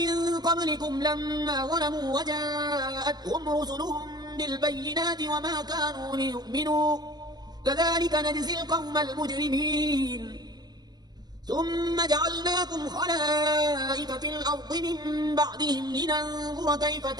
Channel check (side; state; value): left; late; 0.20 ms